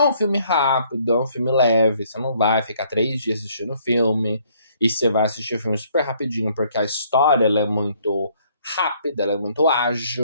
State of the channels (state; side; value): inverted; both; correlation -0.64